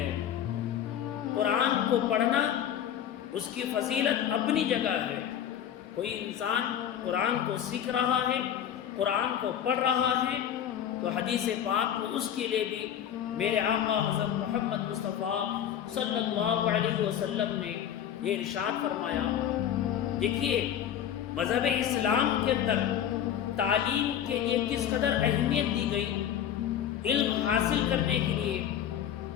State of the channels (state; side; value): quieter; right; 9.8 dB